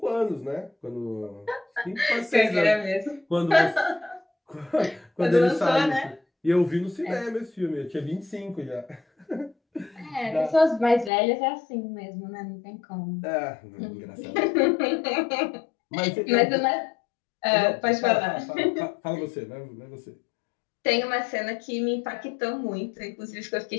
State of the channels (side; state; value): right; drops out; at 11.1 s